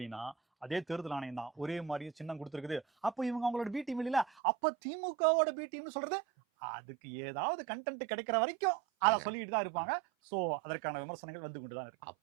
அதே தேர்தல் ஆணையம் தான் ஒரே மாதிரி சின்னம் கொடுத்துருக்குது. அப்போ இவங்க அவங்களோட பி டீம் இல்ல, அப்ப திமுகவோட பி டீம்னு சொல்றது அதுக்கு ஏதாவது கண்டென்ட் கிடைக்கிற வரைக்கும் அதை சொல்லிட்டு தான் இருப்பாங்க. சோ அதற்கான விமர்சனங்கள் வந்து கொண்டுதான் இருக்கு.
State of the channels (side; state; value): left; drops out; at 4.2 s